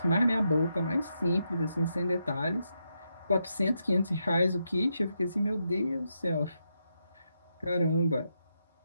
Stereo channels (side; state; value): both; inverted; correlation -0.83